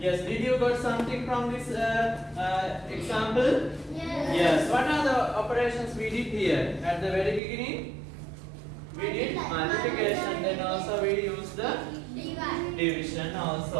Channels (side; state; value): left; drops out; at 7.4 s